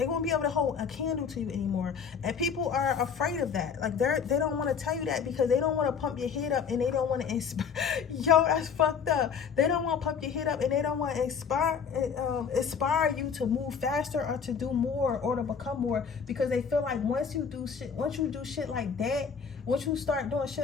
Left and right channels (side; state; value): right; quieter; 6.5 dB